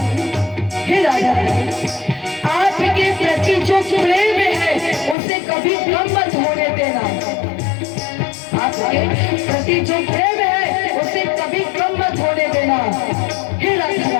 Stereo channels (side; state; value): right; drops out; at 5.2 s